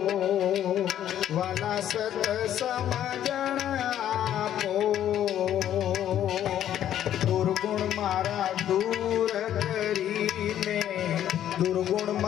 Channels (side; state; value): right; quieter; 11.1 dB